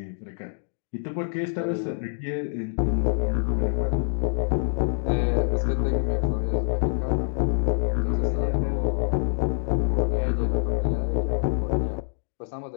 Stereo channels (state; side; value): silent; right; digital silence